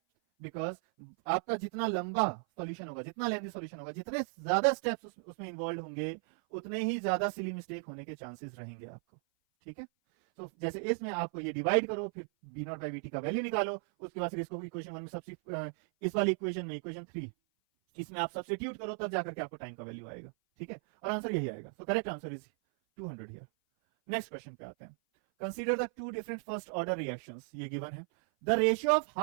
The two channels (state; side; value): silent; left; 54 dB below the other